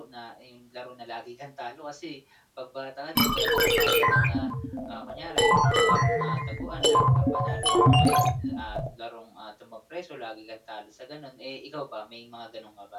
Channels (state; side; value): identical; both; correlation 1.00